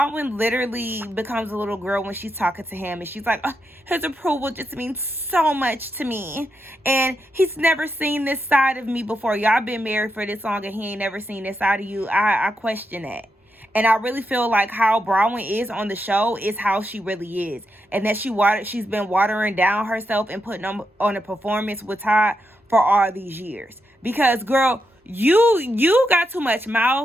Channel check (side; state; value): both; normal; correlation 0.84